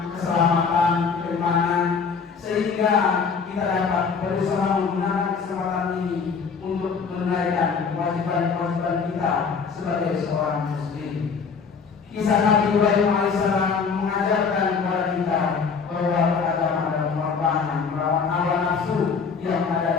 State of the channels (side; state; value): right; quieter; 5.6 dB